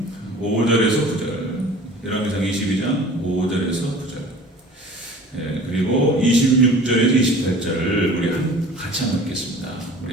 5절에서 9절, 열왕기상 22장 5절에서 9절, 그리고 26절에서 28절을 우리 같이 한번 읽겠습니다.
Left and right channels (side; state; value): both; normal; correlation 0.44